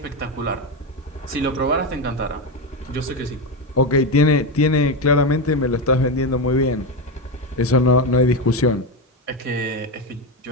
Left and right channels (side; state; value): both; normal; correlation 0.12